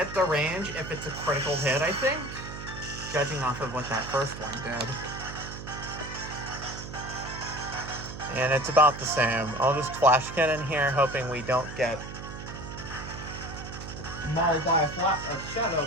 the range if it's a critical hit, I think, judging off of what that first one did. And it's about the same. I'll just Flash Cannon here, hoping we don't get mauled by a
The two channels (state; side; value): noise; right; hum, 10 dB below the sound